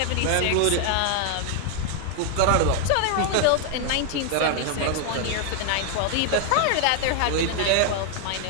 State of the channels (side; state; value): both; different; correlation 0.00